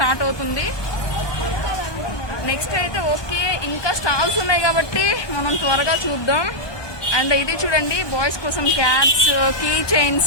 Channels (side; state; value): right; late; 1.2 ms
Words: అవుతుంది. నెక్స్ట్ అయితే ఓకే, ఇంకా స్టాల్స్ ఉన్నాయి కాబట్టి మనం త్వరగా చూద్దాం. అండ్ ఇది చూడండి బాయ్స్ కోసం క్యాప్స్, కీ